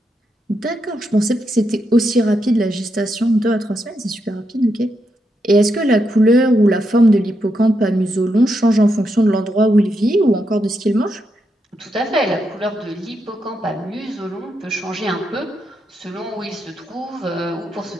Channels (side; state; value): both; normal; correlation 0.82